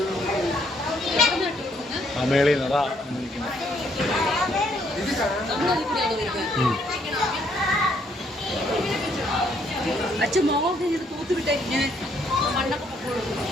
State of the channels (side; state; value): both; normal; correlation 0.69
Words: ആ മേളിൽ നിന്ന് അതാ ഇരിക്കുന്നത്. അച്ഛൻ മോഹൊക്കെ ഇത് തൂത്തുവിട്ടേ ഇങ്ങനെ മണ്ണൊക്കെ നമുക്ക്